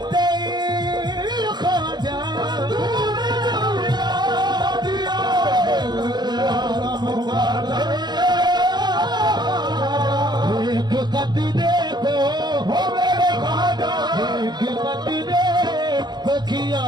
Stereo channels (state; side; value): late; left; 0.21 ms